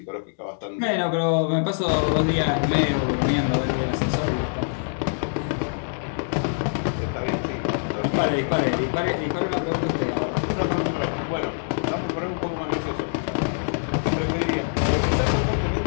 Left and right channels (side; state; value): right; silent; digital silence